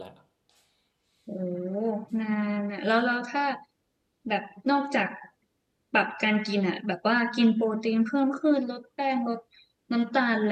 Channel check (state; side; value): identical; both; correlation 1.00